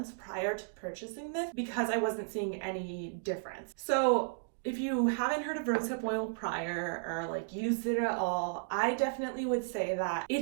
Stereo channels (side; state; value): left; silent; digital silence